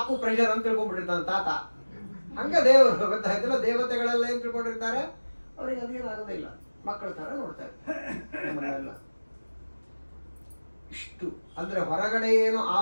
ಪ್ರೆಷರ್ ಅಂತ ತಿಳ್ಕೊಂಡ್ಬಿಟ್ಟಿರ್ತಾನೆ ತಾತ. ಹಂಗ ದೇವರು ಗೊತ್ತಾಯ್ತಿಲ್ಲ, ದೇವತೆಗಳೆಲ್ಲ ಏನ್ ತಿಳ್ಕೊಂಡಿರ್ತಾರೆ, ಅವ್ರಿಗೆ ಅದೇನಾಗೋದಿಲ್ಲ, ಮಕ್ಕಳ ತರ ನೋಡ್ತಾ ಇರ್ತಾರೆ. ಇಷ್ಟು ಅಂದ್ರೆ ಹೊರಗಡೆ ಏನು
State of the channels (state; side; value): inverted; both; correlation -1.00